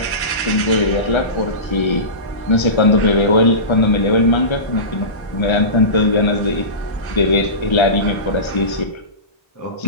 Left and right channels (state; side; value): late; right; 1.3 ms